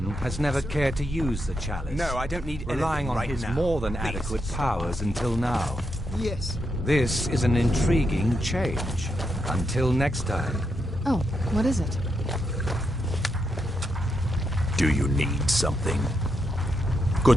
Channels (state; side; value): normal; both; correlation 0.83